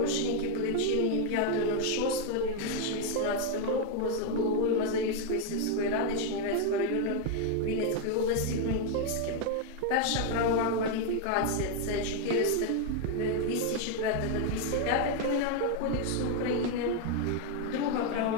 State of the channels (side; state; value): both; different; correlation 0.01